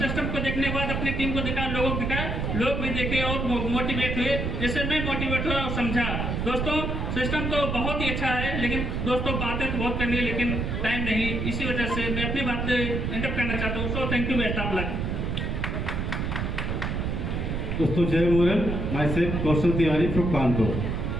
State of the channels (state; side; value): noise; right; rumble, 1 dB below the sound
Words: को देखने के बाद अपनी टीम को दिखाया, लोगों को दिखाया, लोग भी देखे और मोटिवेट हुए, जैसे मैं मोटिवेट हुआ और समझा। दोस्तों, सिस्टम तो बहुत ही अच्छा है, लेकिन दोस्तों बातें तो बहुत करनी है लेकिन टाइम नहीं, इसी वजह से मैं अपनी बातें इंटरप्ट करना चाहता हूँ। So thank you, best of luck. दोस्तों जय model, my self Kaushal Tiwari from Kanpur.